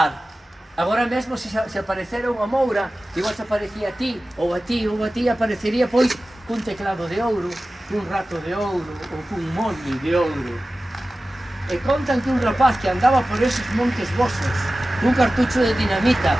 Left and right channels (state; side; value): normal; both; correlation 0.95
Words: Agora mesmo, se aparecera unha moura, igual se aparecía a ti, ou a ti, ou a ti, aparecería, pois, cun teclado de ouro, cun rato de ouro, ou cun molde de ouro. E contan que un rapaz que andaba por esos montes vosos, cun cartucho de dinamita,